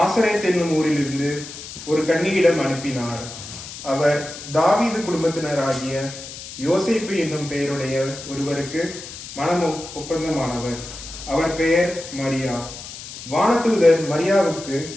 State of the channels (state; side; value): noise; left; hiss, 12 dB below the sound